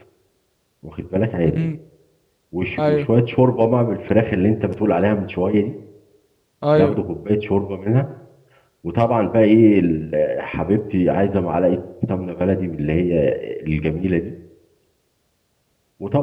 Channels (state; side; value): identical; both; correlation 1.00